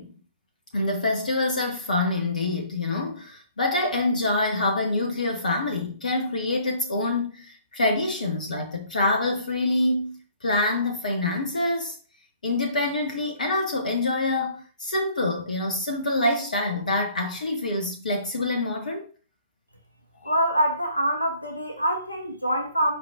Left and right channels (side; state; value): both; inverted; correlation -0.59